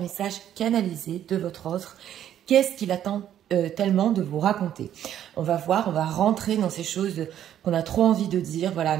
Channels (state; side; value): quieter; left; 10.8 dB